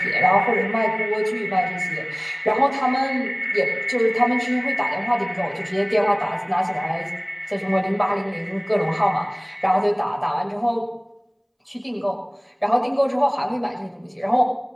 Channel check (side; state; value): both; identical; correlation 1.00